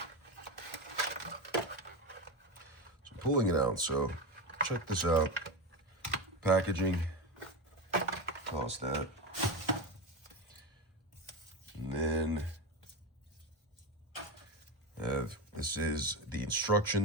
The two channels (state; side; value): normal; both; correlation 0.18